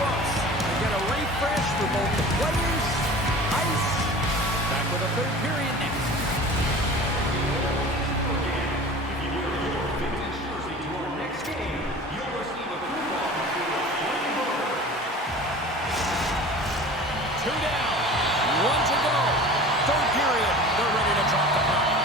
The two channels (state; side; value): normal; both; correlation 0.39